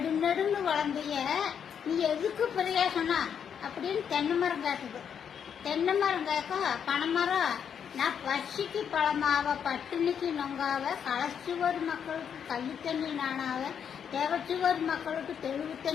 நெடுன்னு வளர்ந்திய நீ எதுக்கு பிரயோசனம் அப்படின்னு தென்னை மரம் கேட்குது. தென்னை மரம் கேட்க பனைமரம் நான் பசிக்கு பழமாவ பட்டினிக்கு நொங்காவ களைச்சுவர் மக்களுக்கு கள்ளி தண்ணி நானாவ தேவச்சுவர் மக்களுக்கு தெளிவு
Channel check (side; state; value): right; quieter; 7.9 dB